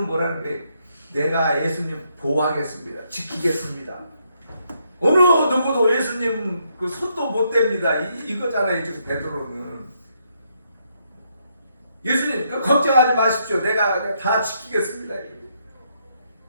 뭐라는 거예요? 내가 예수님 보호하겠습니다. 지키겠습니다. 어느 누구도 예수님 그 손도 못 댑니다. 이거잖아요. 지금 베드로는. 예수님 걱정하지 마십시오. 내가 다 지키겠습니다.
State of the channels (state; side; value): inverted; both; correlation -0.76